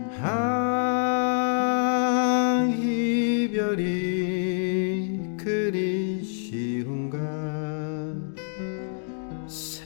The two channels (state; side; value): silent; right; digital silence